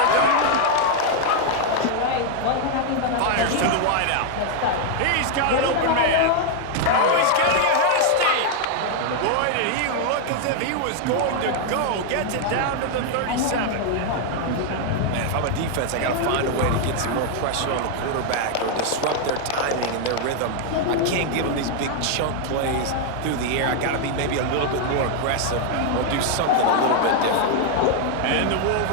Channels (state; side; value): different; both; correlation 0.00